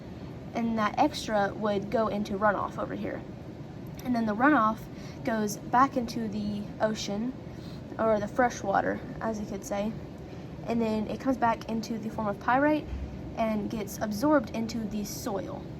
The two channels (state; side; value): identical; both; correlation 1.00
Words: and that extra would go into runoff over here. And then the runoff goes back into the ocean, or the fresh water, as you could say, and then it comes back into the form of pyrite and gets absorbed into the soil.